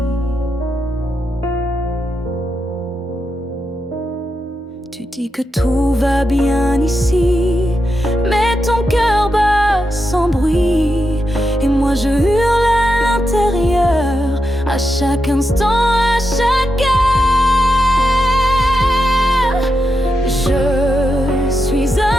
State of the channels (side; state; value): both; normal; correlation 0.86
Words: Tu dis que tout va bien ici, mais ton cœur bat sans bruit. Et moi je hurle à l'intérieur, à chaque instant, à chaque heure. Je suis